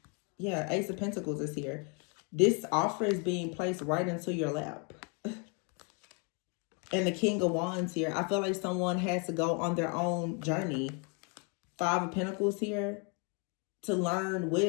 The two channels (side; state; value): right; quieter; 36.2 dB